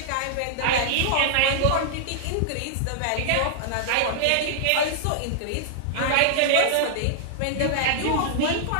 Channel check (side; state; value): both; different; correlation -0.01